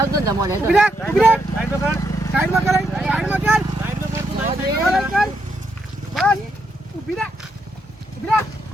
આવતો ને મોડે ઉભી રાખ, ઉભી રાખ. સાઈડ પર કર સાઈડમાં કરાય સાઈડમાં કર. સાઈડ પર કર તું કર, કર. બસ ઉભી રાખ, ઉભી રાખ.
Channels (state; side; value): normal; both; correlation 0.78